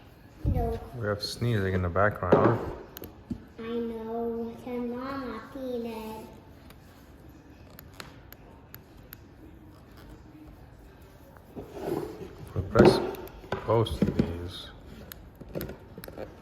No, We have sneezing in the background. I know, your mama peanut. We press both of these.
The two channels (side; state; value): both; identical; correlation 1.00